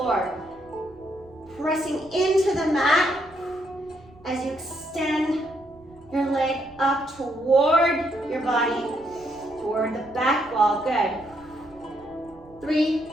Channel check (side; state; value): right; noise; rumble, 25 dB below the sound